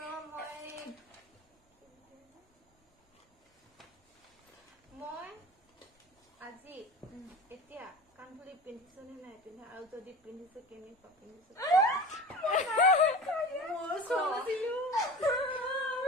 মই আজি এতিয়া কাণফুলি পিন্ধিছো নে নাই পিন্ধা আৰু যদি পিন্ধিছো কেনেকুৱা পিন্ধিছো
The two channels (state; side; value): normal; both; correlation 0.35